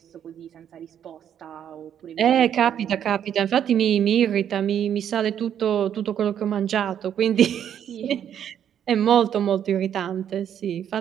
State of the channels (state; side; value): quieter; left; 9.4 dB